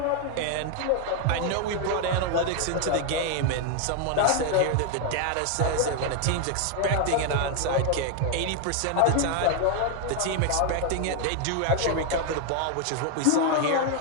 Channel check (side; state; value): both; different; correlation 0.01